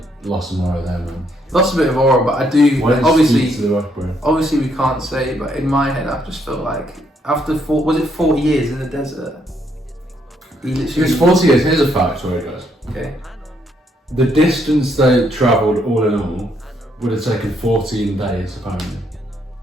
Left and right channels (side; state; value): both; normal; correlation 0.72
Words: Lost some aura there, man. Lost a bit of aura, but I do. Why did he Obviously, speak to the rock, bro? obviously we can't say, but in my head, I just felt like after 40 years in the desert, he It literally. was 40 years. Here's a fact, sorry guys. Okay. The distance they travelled, all in all, would have taken 14 days, apparently.